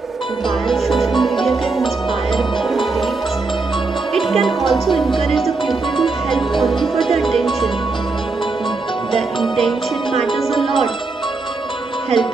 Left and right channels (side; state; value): left; quieter; 3.8 dB